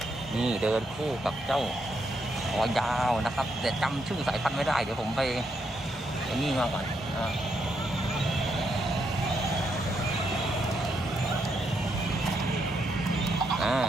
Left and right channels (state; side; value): normal; both; correlation 0.79